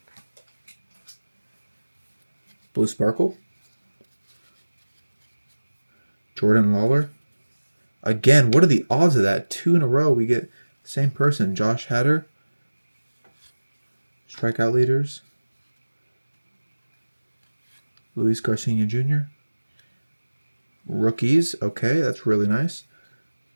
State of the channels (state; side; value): inverted; both; correlation -1.00